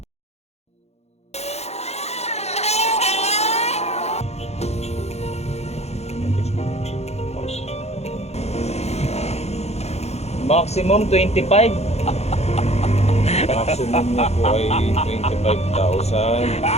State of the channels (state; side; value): late; right; 0.31 ms